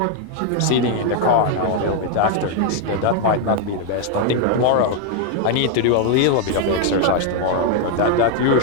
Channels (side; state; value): both; different; correlation 0.00